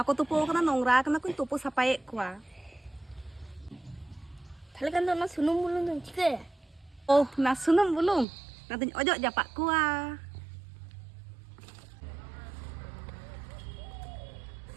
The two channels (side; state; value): left; drops out; at 8.2 s